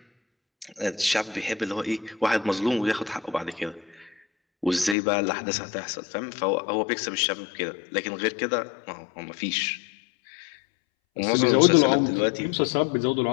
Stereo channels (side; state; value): right; drops out; at 5.0 s